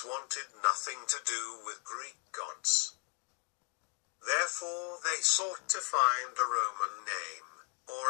wanted nothing to do with Greek gods. Therefore they sought to find a Roman name,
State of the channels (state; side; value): quieter; right; 39.5 dB